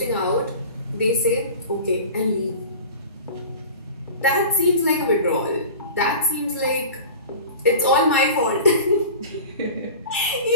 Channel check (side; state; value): both; inverted; correlation -0.37